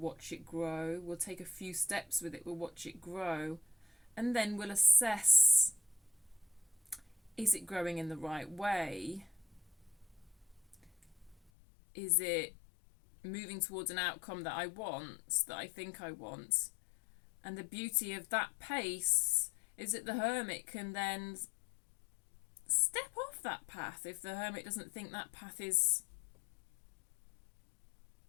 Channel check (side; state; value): right; drops out; at 11.5 s